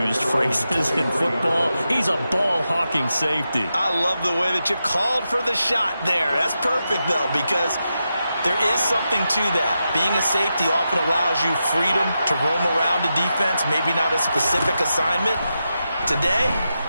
phrases in football. He's a ball-hawking safety. I love the way that you called for the shot there. That's perfect, though, because there is something to that. Being a safety often allows you freedom to roam around the defense, maybe not a specific assignment. Today,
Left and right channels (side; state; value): both; inverted; correlation -0.88